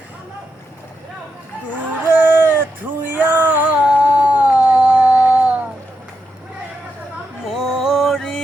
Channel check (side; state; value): both; normal; correlation 0.85